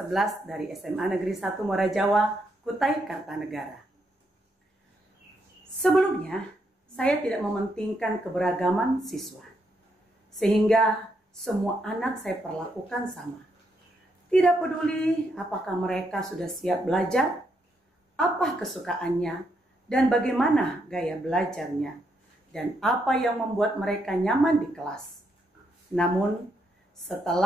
dari SMA Negeri 1 Muara Jawa, Kutai Kartanegara. Sebelumnya, saya tidak mementingkan keberagaman siswa, sehingga semua anak saya perlakukan sama. Tidak peduli apakah mereka sudah siap belajar, apa kesukaannya, dan bagaimana gaya belajarnya, dan apa yang membuat mereka nyaman di kelas. Namun,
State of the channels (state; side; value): normal; both; correlation 0.78